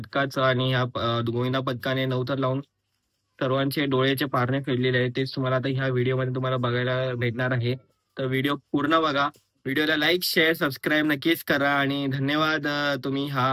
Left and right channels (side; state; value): both; identical; correlation 1.00